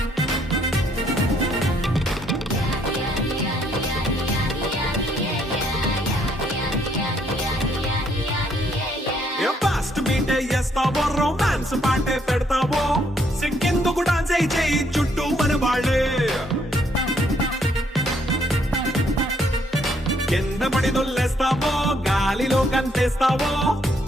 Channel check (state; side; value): normal; both; correlation 0.69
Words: చేస్తావో, రొమాన్స్ పాటే పెడతావో, సిగ్గెందుకు డాన్స్ అయి చేయి చుట్టూ మన వాళ్ళే. కింద పడి దొల్లేస్తావో, గాలిలో కంటేస్తావో,